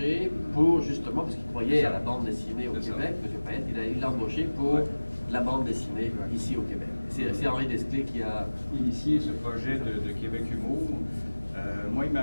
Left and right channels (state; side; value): inverted; both; correlation -1.00